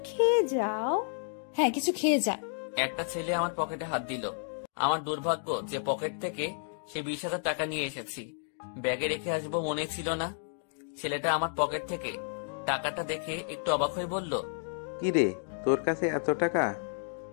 খেয়ে যাও। হ্যাঁ, কিছু খেয়ে যা। একটা ছেলে আমার পকেটে হাত দিল। আমার দুর্ভাগ্য যে পকেট থেকে সে 20,000 টাকা নিয়ে এসেছি। ব্যাগে রেখে আসবো মনে ছিল না। ছেলেটা আমার পকেট থেকে টাকাটা দেখে একটু অবাক হয়ে বলল, কি রে, তোর কাছে এত টাকা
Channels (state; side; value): silent; right; digital silence